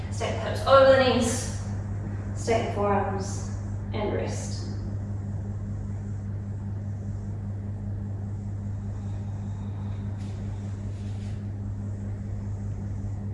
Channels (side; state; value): both; identical; correlation 1.00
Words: stack the hips over the knees, stack the forearms, and rest.